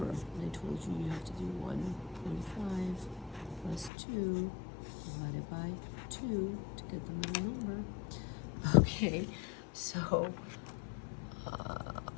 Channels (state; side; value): drops out; right; at 3.9 s